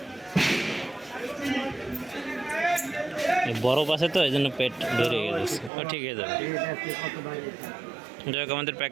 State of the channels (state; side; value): drops out; left; at 5.7 s